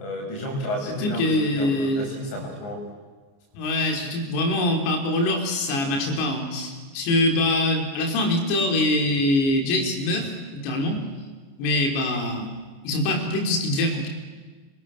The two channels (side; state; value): right; late; 29 ms